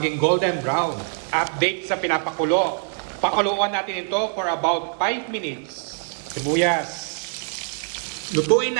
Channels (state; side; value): silent; left; 63 dB below the other